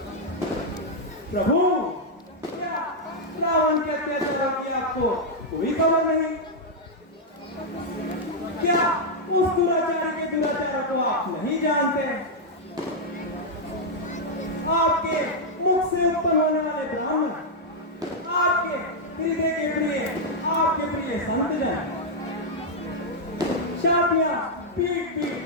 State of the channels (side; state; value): both; normal; correlation -0.03